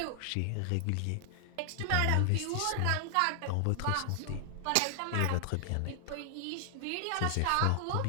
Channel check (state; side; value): different; both; correlation 0.00